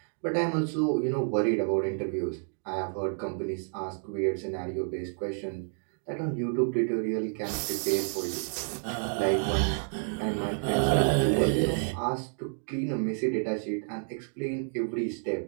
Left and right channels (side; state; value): left; silent; 58 dB below the other